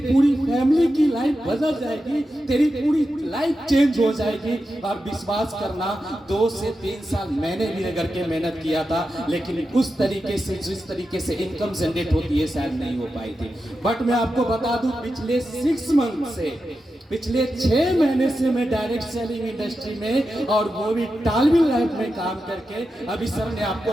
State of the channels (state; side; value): normal; both; correlation 0.90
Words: पूरी फैमिली की लाइफ बदल जाएगी, तेरी पूरी लाइफ चेंज हो जाएगी। और विश्वास करना 2 से 3 साल मैंने भी रगड़ के मेहनत किया था, लेकिन उस तरीके से जिस तरीके से इनकम जनरेट होती है शायद नहीं हो पाई थी। बट मैं आपको बता दूं, पिछले 6 मंथ से, पिछले 6 महीने से मैं डायरेक्ट सेलिंग इंडस्ट्री में और वो भी टालविन लाइफ में काम करके, अभी सर ने आपको